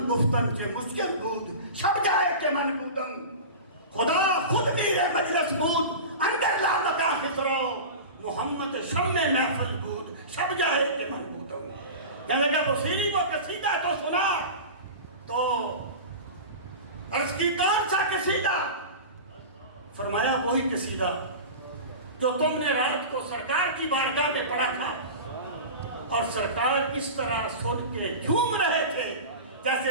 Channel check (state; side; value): inverted; both; correlation -0.30